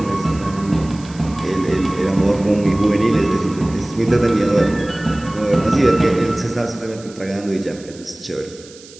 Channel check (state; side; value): noise; right; hiss, 21 dB below the sound